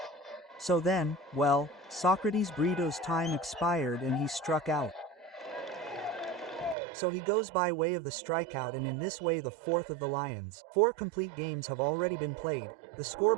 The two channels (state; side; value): drops out; left; at 6.8 s